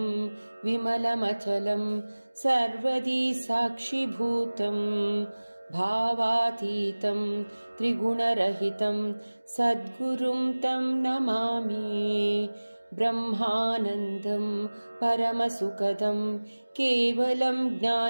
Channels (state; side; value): inverted; both; correlation -1.00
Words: विमलमचलं सर्वदी साक्षिभूतं भावातीतं त्रिगुणरहितं सद्गुरुं तं नमामि। ब्रह्मानन्दं परमसुखदं केवलं